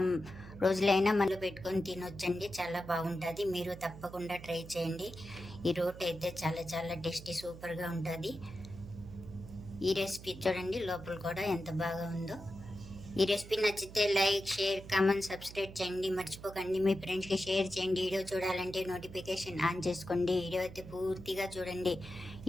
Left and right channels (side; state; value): right; noise; hum, 15 dB below the sound